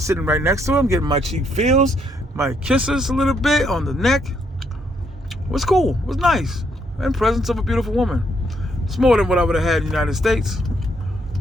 sitting right next to him, getting my cheek feels, my kisses a little bit on the neck. It was cool. It was nice. In presence of a beautiful woman. It's more than what I would have had in the United States.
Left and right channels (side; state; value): both; normal; correlation 0.73